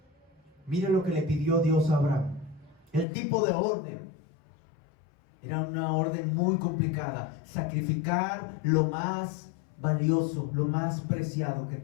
Mire lo que le pidió Dios a Abraham. El tipo de orden era una orden muy complicada. Sacrificar lo más valioso, lo más preciado que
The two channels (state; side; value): drops out; right; at 3.1 s